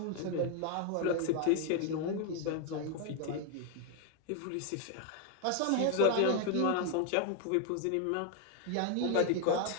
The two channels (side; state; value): both; different; correlation 0.01